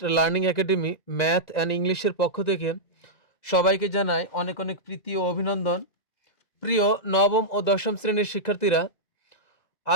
learning academy math and ইংলিশের পক্ষ থেকে সবাইকে জানাই অনেক অনেক প্রীতি ও অভিনন্দন। প্রিয় নবম ও দশম শ্রেণীর শিক্ষার্থীরা,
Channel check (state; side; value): late; right; 2.0 ms